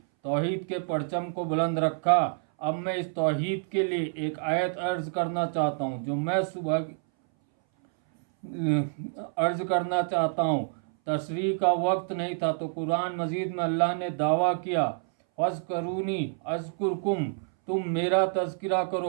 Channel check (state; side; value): silent; left; 59 dB below the other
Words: तौहीद के परचम को बुलंद रखा। अब मैं इस तौहीद के लिए एक आयत अर्ज़ करना चाहता हूँ, जो मैं सुबह अर्ज़ करना चाहता हूँ। तशरीह का वक्त नहीं था तो कुरान मजीद में अल्लाह ने दावा किया, फ़ज़्कुरूनी अज़्कुरकुम, तुम मेरा तज़किरा